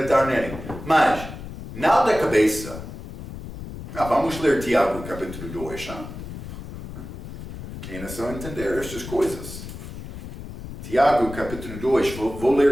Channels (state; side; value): noise; left; rumble, 11 dB below the sound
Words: nele. Mas, não da cabeça. Vamos ler Tiago capítulo 2. É necessário entender estas coisas. Tiago capítulo 2, vou